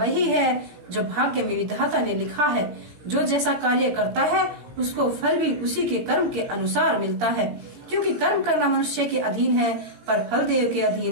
है जो भाग्य में विधाता ने लिखा है। जो जैसा कार्य करता है उसको फल भी उसी के कर्म के अनुसार मिलता है, क्योंकि कर्म करना मनुष्य के अधीन है पर फल देव के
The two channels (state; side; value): late; left; 17 ms